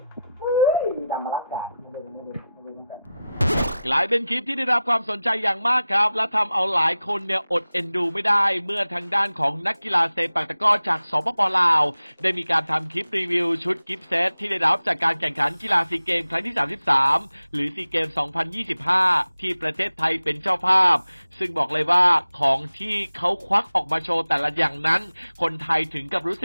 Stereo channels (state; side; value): inverted; both; correlation -0.93